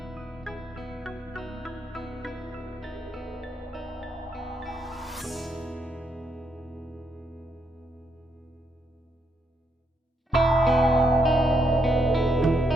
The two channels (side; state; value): both; normal; correlation 0.77